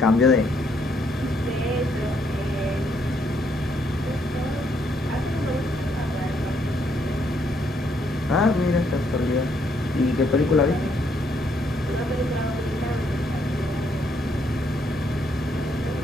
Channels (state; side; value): normal; both; correlation 0.72